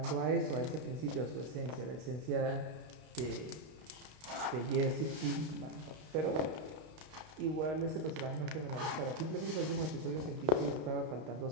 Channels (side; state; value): left; late; 32 ms